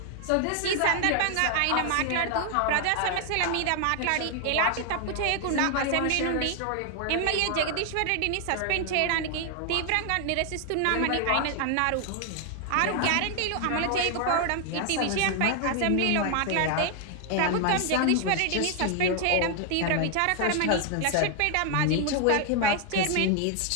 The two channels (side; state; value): both; different; correlation 0.00